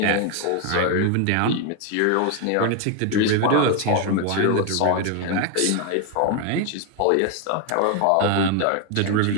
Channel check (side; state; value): both; different; correlation 0.01